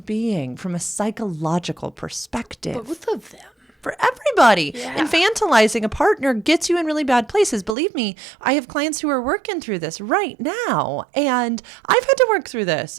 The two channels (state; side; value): drops out; left; at 7.8 s